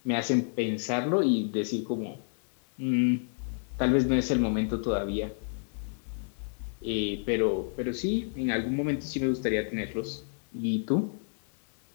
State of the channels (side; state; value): right; silent; 58 dB below the other